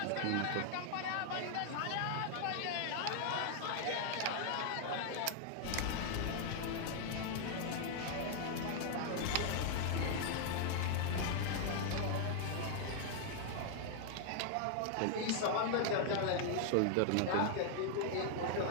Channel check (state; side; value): different; both; correlation -0.01